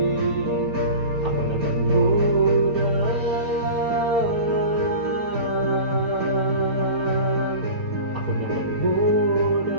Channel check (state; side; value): late; left; 4.0 ms